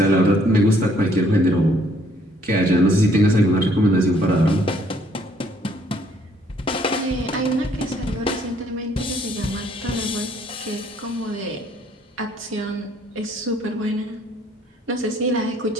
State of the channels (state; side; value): normal; both; correlation 0.64